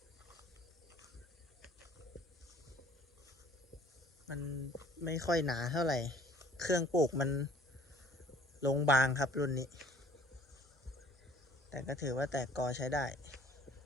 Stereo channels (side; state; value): both; normal; correlation 0.54